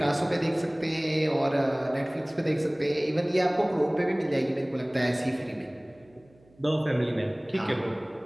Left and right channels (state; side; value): noise; right; hum, 30 dB below the sound